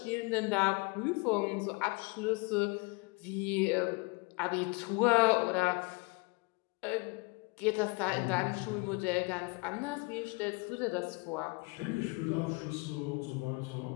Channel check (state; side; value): quieter; right; 28.2 dB